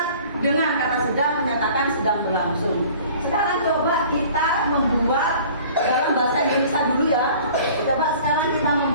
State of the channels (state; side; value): inverted; both; correlation -0.48